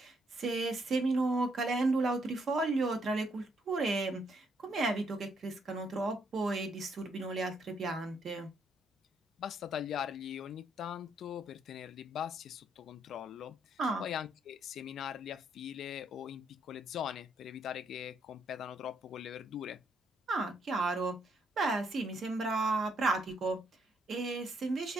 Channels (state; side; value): normal; both; correlation 0.73